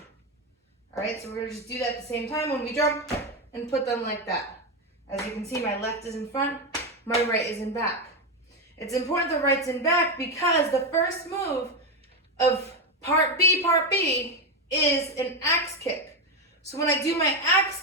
All right, so we're gonna just do that at the same time when we jump and put them like that. As you can see, my left is in front, my right is in back. It's important the right's in back because the first move of Part B is an axe kick. So when I do my axe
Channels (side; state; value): both; normal; correlation 0.09